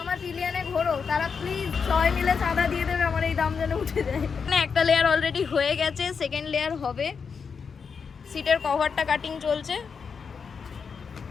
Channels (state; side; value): quieter; right; 5.9 dB